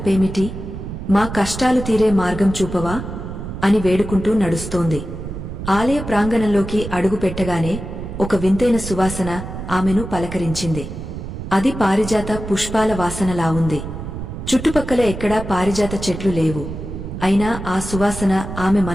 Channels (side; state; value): right; noise; rumble, 8 dB below the sound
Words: మా కష్టాలు తీరే మార్గం చూపవా అని వేడుకుంటూ నడుస్తోంది. ఆలయ ప్రాంగణంలోకి అడుగు పెట్టగానే ఒక వింతైన సువాసన ఆమెను పలకరించింది. అది పారిజాత పుష్పాల వాసనలా ఉంది. చుట్టుపక్కల ఎక్కడా పారిజాత చెట్లు లేవు. అయినా ఆ సువాసన ఆమె